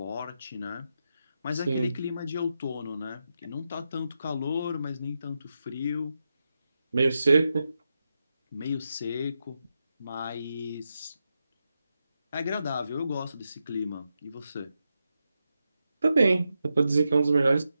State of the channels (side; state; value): both; inverted; correlation -0.87